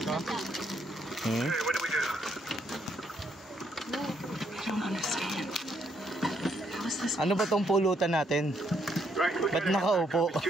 Hmm? What do we do? I don't understand. How is this? Ano ba tong pulutan natin? Right, we Ba't gotta head nakaupo? back up. It's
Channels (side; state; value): both; normal; correlation 0.73